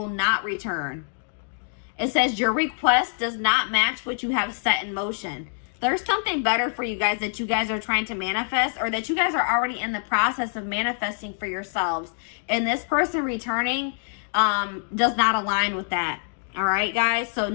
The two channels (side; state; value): right; silent; digital silence